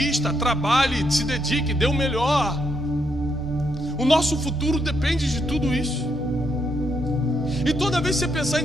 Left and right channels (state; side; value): normal; both; correlation 0.77